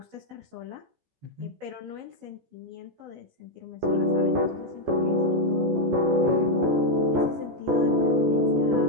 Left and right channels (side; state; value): left; late; 14 ms